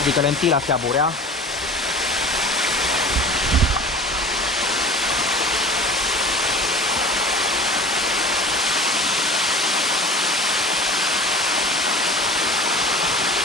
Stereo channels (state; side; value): normal; both; correlation 0.40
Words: lentila se aburea.